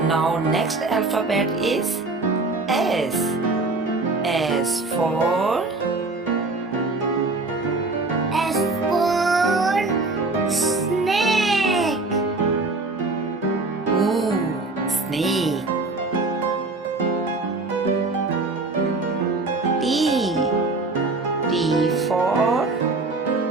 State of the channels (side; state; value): left; quieter; 3.4 dB